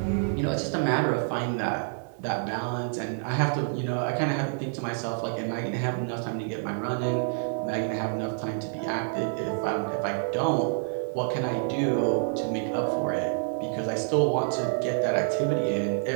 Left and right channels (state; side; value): silent; left; 59 dB below the other